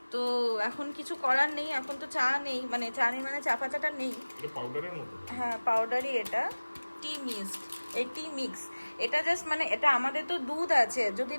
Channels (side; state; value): both; inverted; correlation -1.00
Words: তো এখন কিছু করার নেই, এখন তো চা নেই, মানে চা পাতাটা নেই। এটা পাউডারের মতো? হ্যাঁ পাউডারই, এটা টি মিক্স। এটা জাস্ট মানে এটা আমাদের তো দুধ আছে, যদি